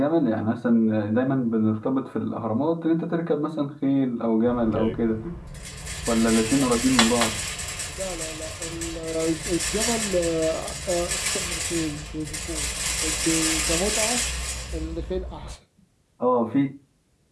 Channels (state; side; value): identical; both; correlation 1.00